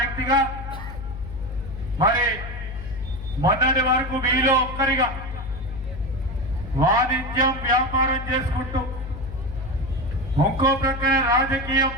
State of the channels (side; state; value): left; noise; hum, 10 dB below the sound